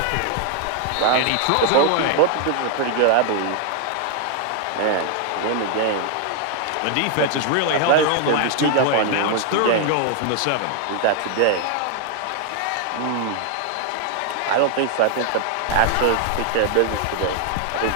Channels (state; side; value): different; both; correlation 0.00